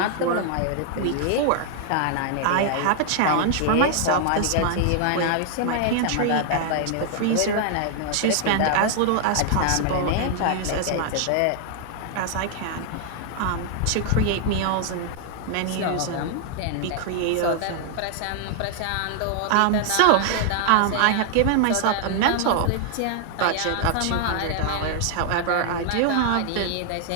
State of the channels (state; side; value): different; both; correlation 0.00